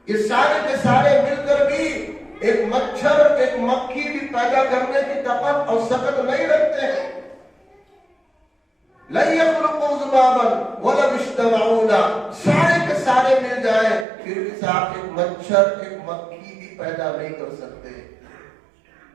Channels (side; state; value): left; drops out; at 14.1 s